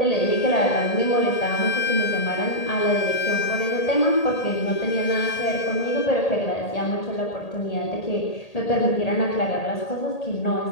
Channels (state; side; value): late; right; 1.8 ms